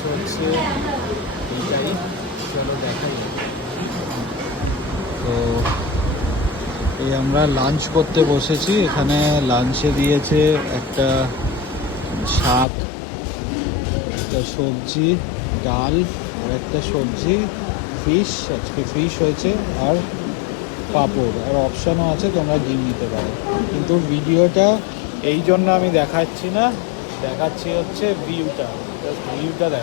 হচ্ছে এইটাই, চলো দেখাই। তো এই আমরা লাঞ্চ করতে বসেছি। এখানে লাঞ্চে দিয়েছে একটা শাক, একটা সবজি, ডাল আর একটা সবজি, ফিশ, আজকে ফিশ হয়েছে, আর পাঁপড়, আর অপশানও আছে তোমরা ডিম নিতে পারো। কিন্তু ভিডিওটা এই জন্য আমি দেখাচ্ছি না, দেখাচ্ছি হচ্ছে ভিউটা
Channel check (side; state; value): right; drops out; at 12.7 s